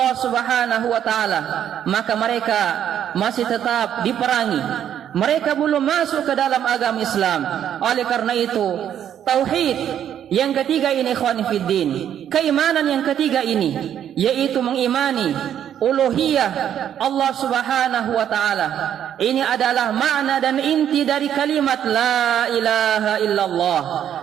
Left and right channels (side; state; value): left; quieter; 9.9 dB